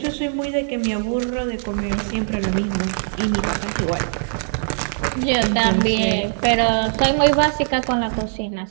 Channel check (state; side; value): silent; left; digital silence